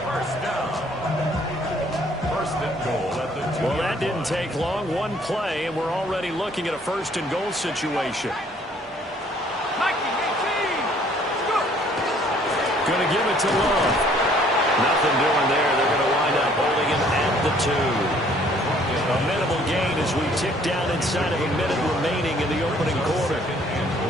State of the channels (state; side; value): normal; both; correlation 0.60